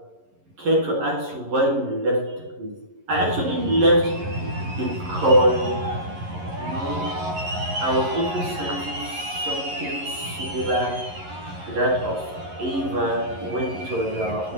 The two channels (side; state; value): left; late; 11 ms